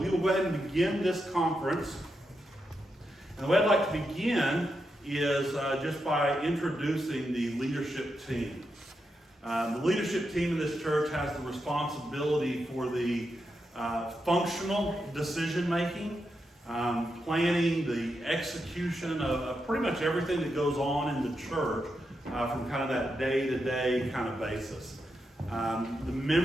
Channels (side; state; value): both; normal; correlation 0.85